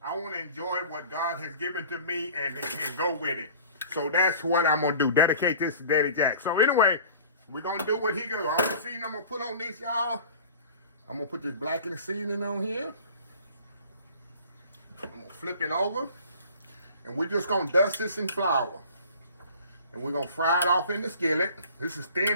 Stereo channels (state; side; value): inverted; both; correlation -0.44